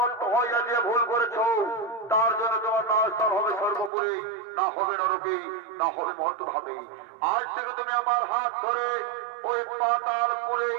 ভক্ত হইয়া যে ভুল করেছ তার জন্য তোমার নাস্তার হবে সর্বপুরে, না হবে নরকে, না হবে মর্তভাবে। আজ থেকে তুমি আমার হাত ধরে ওই পাতালপুরেই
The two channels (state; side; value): drops out; left; at 3.9 s